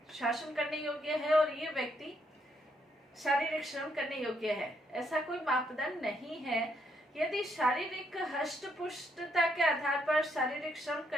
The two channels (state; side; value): normal; both; correlation 0.74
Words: शासन करने योग्य है और ये व्यक्ति शारीरिक श्रम करने योग्य है? ऐसा कोई मापदंड नहीं है। यदि शारीरिक हष्टपुष्टता के आधार पर शारीरिक श्रम